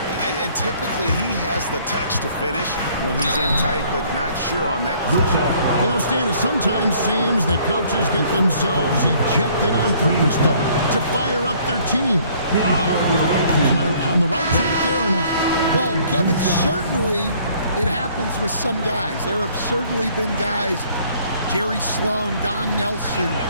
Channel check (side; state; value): both; inverted; correlation -0.59